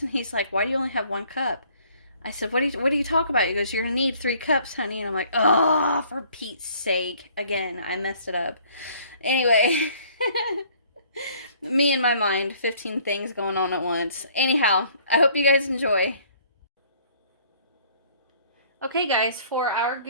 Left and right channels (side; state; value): both; inverted; correlation -0.58